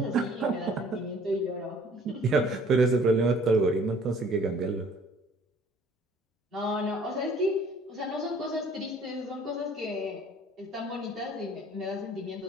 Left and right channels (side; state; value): both; normal; correlation 0.55